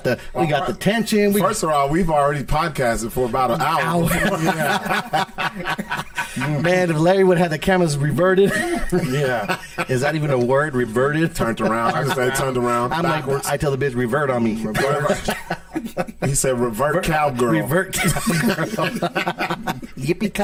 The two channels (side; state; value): both; identical; correlation 1.00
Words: the tension. First of all, we've already podcasted for about an hour. Man, if Larry would have the cameras reverted. Yeah. Is that even a word? Reverted? Turned around. I just say turned around. I'm backwards. like, I tell the bitch revert on me. He said revert cowgirl. Revert cowgirl.